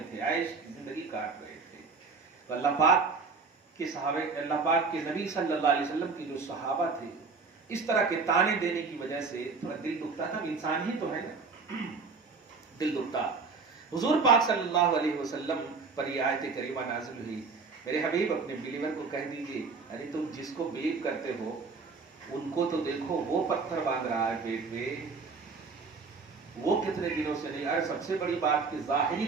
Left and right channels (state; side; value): quieter; left; 4.5 dB